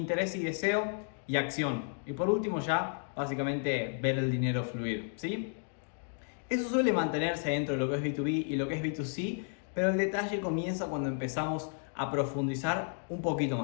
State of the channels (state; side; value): silent; right; 56 dB below the other